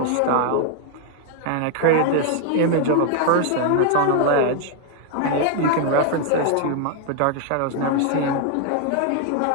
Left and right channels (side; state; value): both; different; correlation 0.00